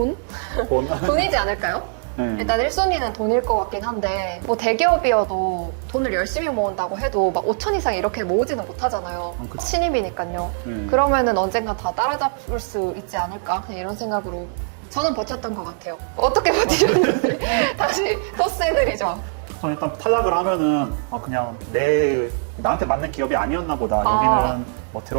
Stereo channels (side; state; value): left; silent; digital silence